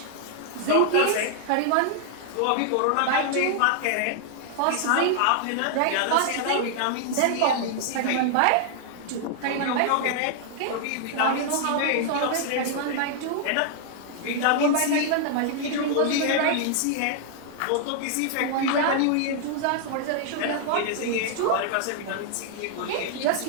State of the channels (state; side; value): different; both; correlation 0.00